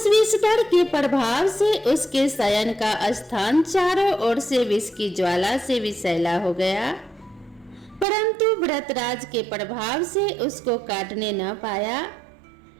विषधर के प्रभाव से उसके शयन का स्थान चारों ओर से विष की ज्वाला से विषैला हो गया, परंतु व्रतराज के प्रभाव से उसको काटने न पाया,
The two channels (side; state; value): left; drops out; at 8.1 s